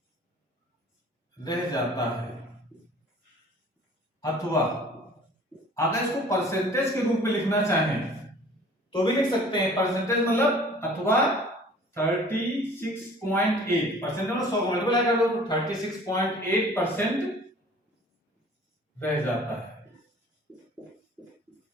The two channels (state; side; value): normal; both; correlation 0.49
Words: रह जाता है, अथवा अगर इसको परसेंटेज के रूप में लिखना चाहें तो भी लिख सकते हैं। परसेंटेज मतलब अथवा 36.8 परसेंट मतलब 100 को मल्टीप्लाई कर दो तो 36.8% रह जाता है।